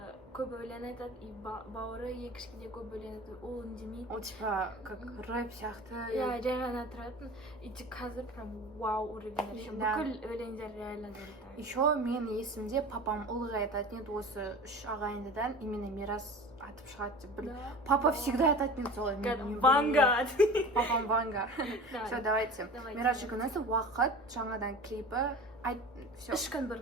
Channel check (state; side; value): normal; both; correlation 0.37